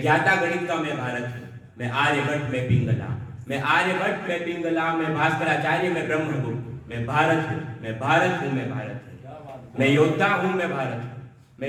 ज्ञाता गणित का मैं भारत हूं, मैं आर्यभट्ट में पिंगला, मैं आर्यभट्ट में पिंगला, मैं भास्कराचार्य में ब्रह्मगुप्त। मैं भारत हूं, मैं भारत हूं, मैं भारत हूं। मैं योद्धा हूं, मैं भारत हूं,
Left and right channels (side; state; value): both; identical; correlation 1.00